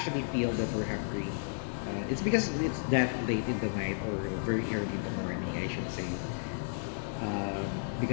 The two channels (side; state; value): right; silent; digital silence